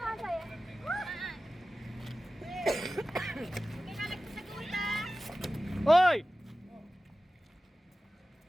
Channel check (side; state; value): both; normal; correlation 0.95